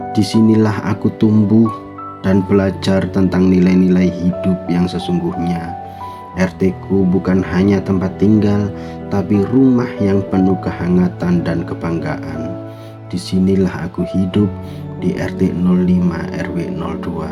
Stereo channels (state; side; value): identical; both; correlation 1.00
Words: Disinilah aku tumbuh dan belajar tentang nilai-nilai hidup yang sesungguhnya. RT-ku bukan hanya tempat tinggal, tapi rumah yang penuh kehangatan dan kebanggaan. Disinilah aku hidup di RT 05 RW